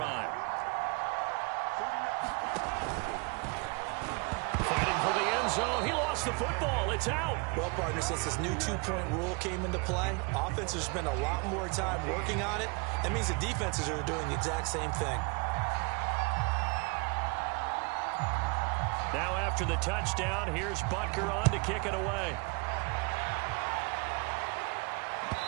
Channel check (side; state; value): left; quieter; 30.9 dB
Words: Fighting for the end zone. He lost the football. It's out. Well, partner, since this new 2-point rule came into play, offenses spend a lot more time working on it. That means the defenses are doing the exact same thing. Now after the touchdown, here's Butker on to kick it away.